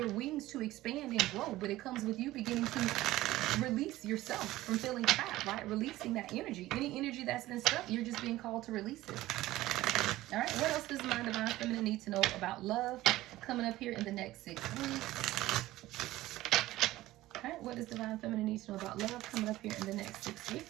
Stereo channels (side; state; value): left; quieter; 16.6 dB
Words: wings to expand and grow, but it comes with you beginning to release yourself from feeling trapped, right? Releasing that energy. Any energy that's been stuck, you're just being called to release it. All right, what else does my Divine Feminine need to know about love coming up here in the next 6 weeks? All right, what does Divine Feminine need to know about love coming up here in the next 6